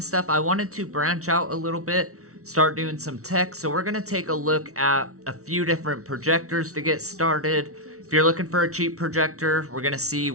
stuff. I wanted to branch out a little bit, start doing some tech. So we're gonna take a look at a few different projectors to get started. If you're looking for a cheap projector, we're gonna see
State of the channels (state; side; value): late; left; 0.64 ms